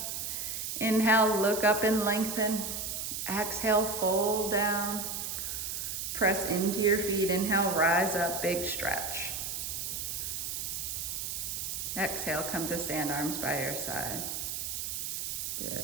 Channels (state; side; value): noise; right; hiss, 3 dB below the sound